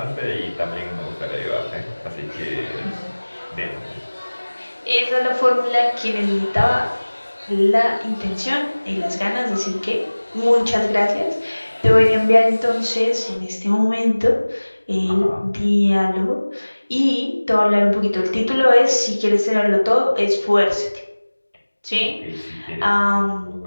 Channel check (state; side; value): inverted; both; correlation -1.00